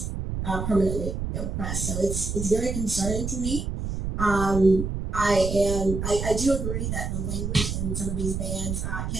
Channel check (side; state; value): right; noise; rumble, 3 dB below the sound